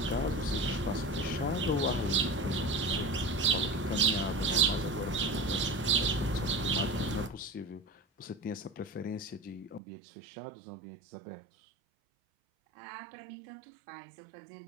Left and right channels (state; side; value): drops out; left; at 9.8 s